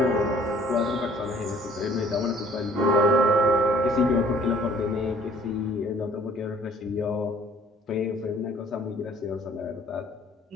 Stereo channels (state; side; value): normal; both; correlation 0.56